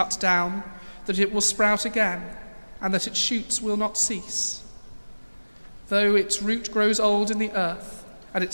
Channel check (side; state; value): both; inverted; correlation -1.00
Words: down, that it will sprout again, and that its shoots will not cease. Though its root grows old in the earth, and